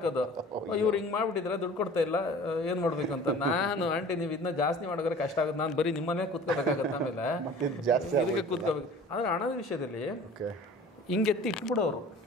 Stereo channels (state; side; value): normal; both; correlation 0.45